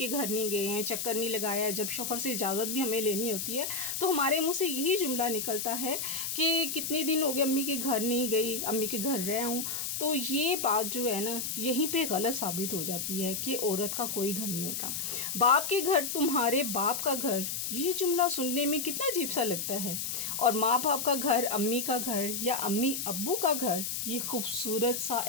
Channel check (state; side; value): noise; left; hiss, 3 dB below the sound